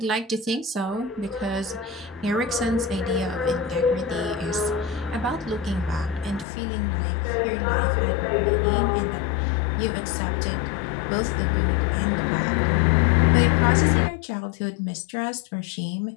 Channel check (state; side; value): drops out; right; at 6.5 s